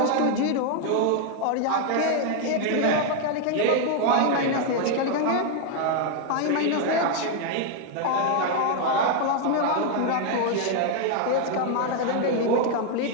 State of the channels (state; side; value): different; both; correlation 0.01